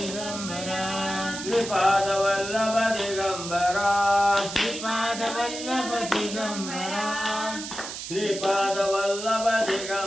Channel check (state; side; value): noise; right; hiss, 8 dB below the sound